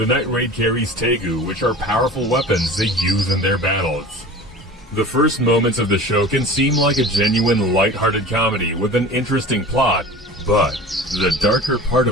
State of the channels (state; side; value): normal; both; correlation 0.38